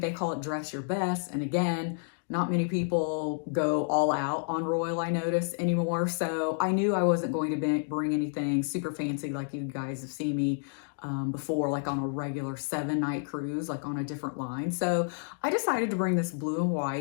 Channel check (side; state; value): right; silent; digital silence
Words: they call it dress your best. And again, not many people go all out on Royal, I notice, anymore. So I knew I wasn't going to bring anything super fancy like you guys have seen me before, like on a regular 7-night cruise, like on a different line. So I decided to bring this blue and